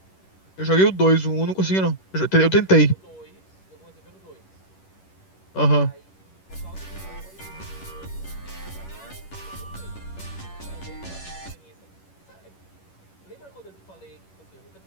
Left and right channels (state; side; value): late; right; 11 ms